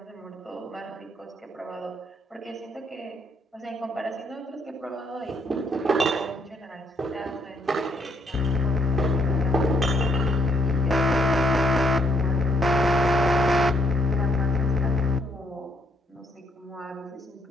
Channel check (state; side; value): normal; both; correlation 0.71